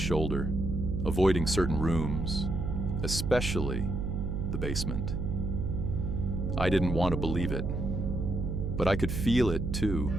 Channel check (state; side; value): noise; right; hum, 2 dB below the sound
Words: avoiding certain rooms, especially the basement. I didn't want to believe it, but I could feel it too.